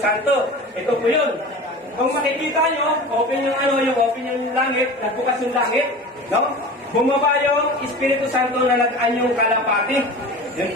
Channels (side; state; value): both; normal; correlation 0.35